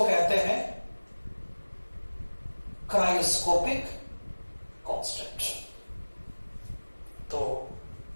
कहते हैं क्रायोस्कोपिक कांस्टेंट। तो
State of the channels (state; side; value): inverted; both; correlation -1.00